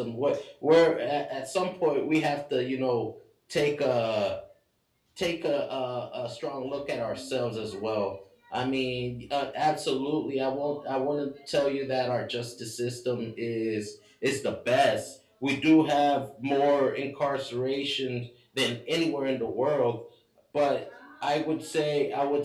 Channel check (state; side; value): identical; both; correlation 1.00